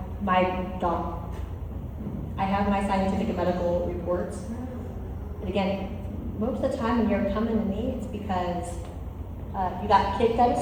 my doc. I have my scientific and medical reports. And again, most of the time when you're coming to me, it's because you got kicked out of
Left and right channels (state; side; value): identical; both; correlation 1.00